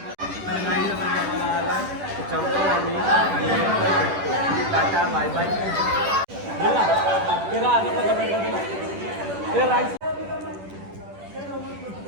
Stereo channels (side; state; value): left; late; 10 ms